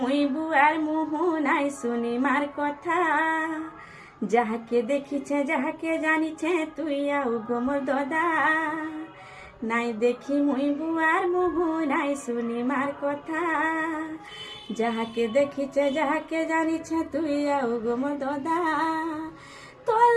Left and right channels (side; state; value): both; identical; correlation 1.00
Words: মুই বুয়ার মুহ নাই শুনি মার কথা যাহাকে দেখিছে যাহাকে জানিছে তুই আউ গো মোর দাদা নাই দেখি মুই বুয়ার মুহ নাই শুনি মার কথা যাহাকে দেখিছে যাহাকে জানিছে তুই আউ গো মোর দাদা তোর